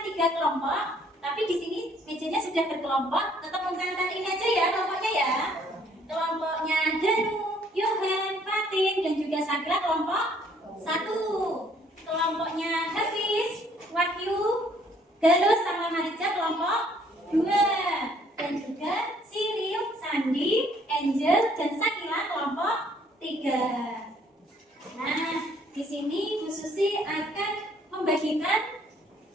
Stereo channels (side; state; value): both; normal; correlation 0.63